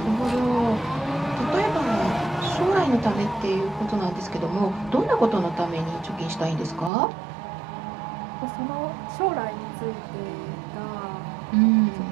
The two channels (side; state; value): left; drops out; at 6.9 s